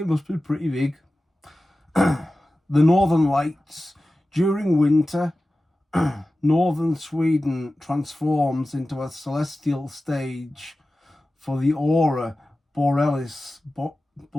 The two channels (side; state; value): both; normal; correlation 0.95